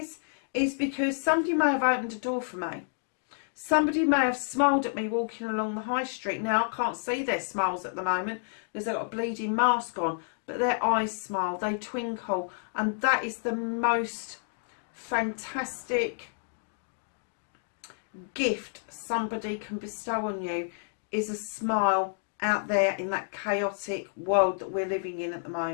because somebody may have opened a door for me. Somebody may have smiled at me walking along the high street. Now, I can't see their smiles at the moment because they've got a bleeding mask on, but their eyes smile, they twinkle, and that is the most fantastic gift somebody can bestow on you, is a smile out there in that chaotic world that we're living in at the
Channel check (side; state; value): right; silent; digital silence